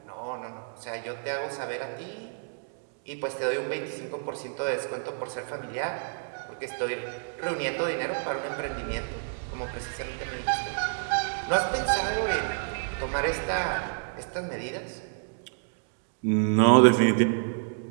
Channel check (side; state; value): left; silent; digital silence